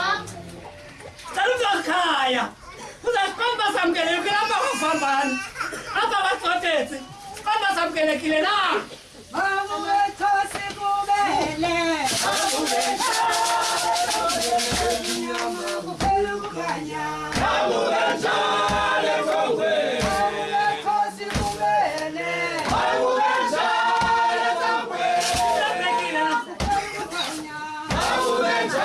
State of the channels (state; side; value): identical; both; correlation 1.00